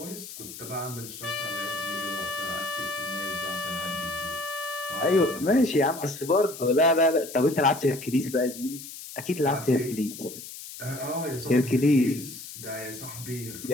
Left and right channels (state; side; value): noise; left; hiss, 12 dB below the sound